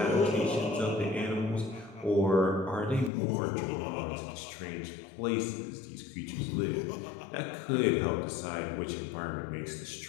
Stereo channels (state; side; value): drops out; right; at 3.1 s